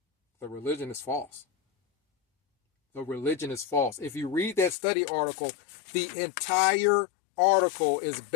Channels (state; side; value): drops out; right; at 4.8 s